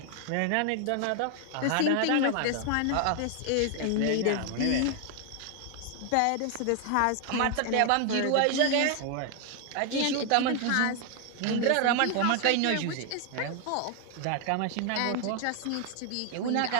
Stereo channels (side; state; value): both; different; correlation 0.00